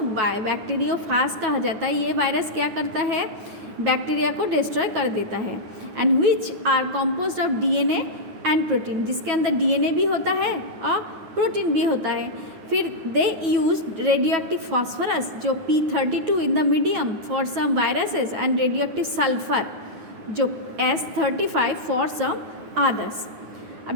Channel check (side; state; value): left; late; 9.2 ms